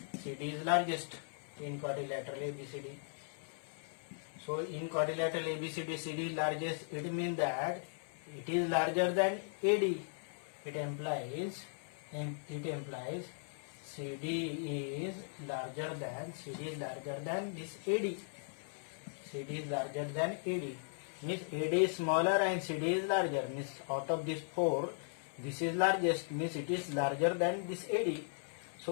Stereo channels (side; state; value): right; silent; 53 dB below the other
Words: CD is largest in quadrilateral ABCD. So in quadrilateral ABCD, CD is largest. It means that it is larger than AD. It implies CD is larger than this AD. CD is larger than AD. Means AD is smaller and CD is larger. Means out of these four, this is largest. Means it is larger than this AD.